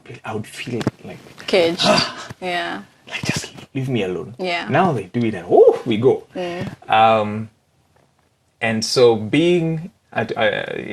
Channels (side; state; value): both; identical; correlation 1.00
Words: I would feel like caged. Yeah. Like, just leave me alone. Yeah. Now they do it and we go. And so